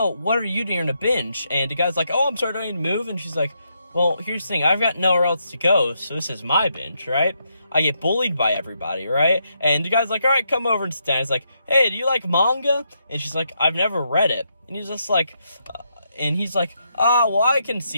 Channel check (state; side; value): inverted; both; correlation -0.79